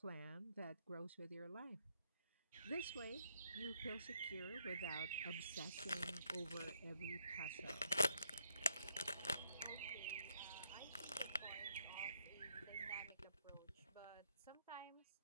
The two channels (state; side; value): inverted; both; correlation -0.73